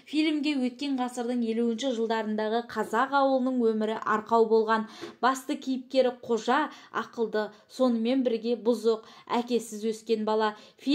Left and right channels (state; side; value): identical; both; correlation 1.00